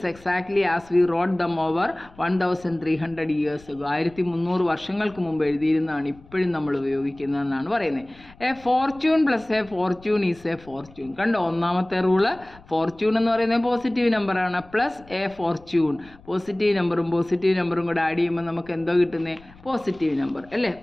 exactly as we wrote them over 1300 years ago. 1300 വർഷങ്ങൾക്ക് മുമ്പ് എഴുതിയിരുന്നതാണ് ഇപ്പോഴും നമ്മൾ ഉപയോഗിക്കുന്നതെന്നാണ് പറയുന്നത്. A Fortune plus A Fortune is a Fortune. കണ്ടോ, ഒന്നാമത്തെ റൂള് ഫോർച്യൂൺ എന്ന് പറയുന്നത് positive നമ്പറാണ്, പ്ലസ് എ ഫോർച്യൂൺ പോസിറ്റീവ് നമ്പറും കൂടെ ആഡ് ചെയ്യുമ്പോൾ നമുക്ക് എന്തോ കിട്ടുന്നത്? പോസിറ്റീവ് നമ്പർ അല്ലേ.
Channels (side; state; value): left; noise; rumble, 24 dB below the sound